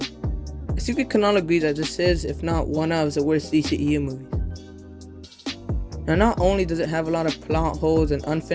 I think we can all agree that this is, if not one of, the worst DCEU movies. Now not only does it have a lot of plot holes and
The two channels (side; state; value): both; identical; correlation 1.00